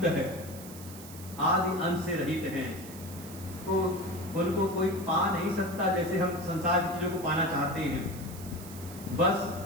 है, आदि अंत से रहित हैं। तो उनको कोई पा नहीं सकता, जैसे हम संसार की चीजों को पाना चाहते हैं। बस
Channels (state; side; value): noise; right; hiss, 15 dB below the sound